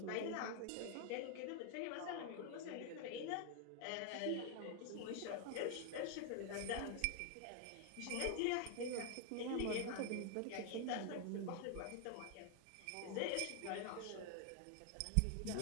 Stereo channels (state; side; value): different; both; correlation 0.00